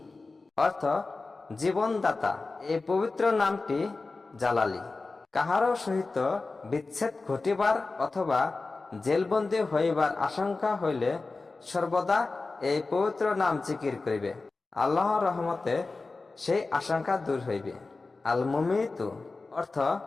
অর্থ জীবনদাতা। এই পবিত্র নামটি জালালি। কাহারও সহিত বিচ্ছেদ ঘটিবার অথবা জেলবন্দী হইবার আশঙ্কা হইলে সর্বদা এই পবিত্র নাম জিকির করিবে, আল্লাহর রহমতে সেই আশঙ্কা দূর হইবে। আল মুমিতু অর্থ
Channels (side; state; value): right; quieter; 3.7 dB